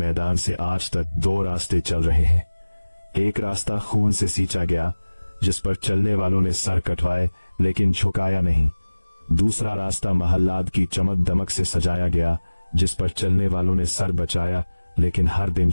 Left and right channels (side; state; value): both; inverted; correlation -1.00